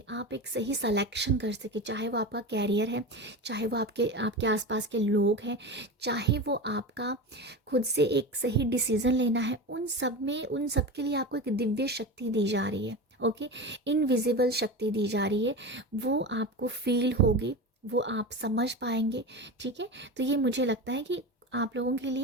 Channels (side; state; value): both; normal; correlation 0.25